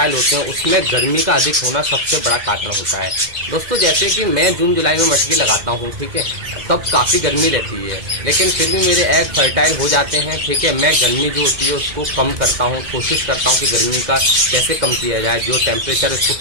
होते हैं उसमें गर्मी का अधिक होना सबसे बड़ा कारण होता है। दोस्तों, जैसे कि मैं जून जुलाई में मटकी लगाता हूँ, ठीक है, तब काफ़ी गर्मी रहती है, लेकिन फिर भी मेरे एग फर्टाइल हो जाते हैं। ठीक है, मैं गर्मी जो होती है उसको कम करता हूँ, कोशिश करता हूँ कि गर्मी का कैसे कम किया जाए, जो टेम्परेचर है उसको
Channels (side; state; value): left; late; 2.0 ms